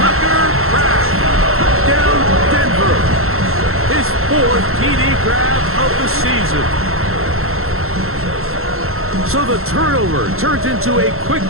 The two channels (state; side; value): late; left; 0.62 ms